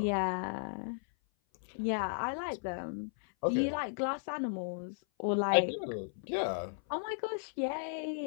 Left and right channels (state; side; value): silent; right; 55 dB below the other